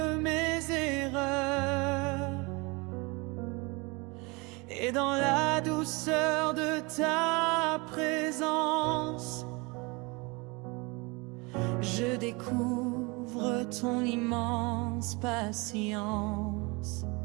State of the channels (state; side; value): quieter; left; 27.2 dB